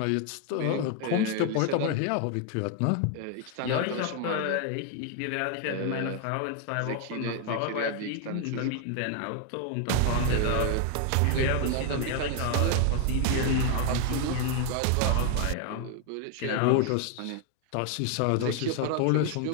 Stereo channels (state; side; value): different; both; correlation 0.01